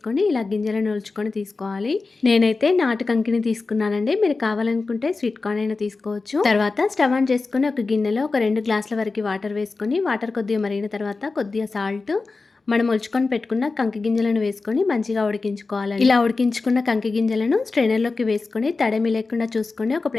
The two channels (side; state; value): right; quieter; 3.9 dB